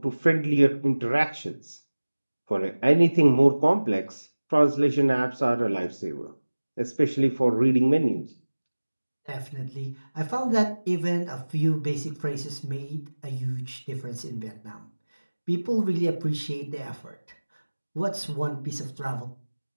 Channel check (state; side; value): inverted; both; correlation -1.00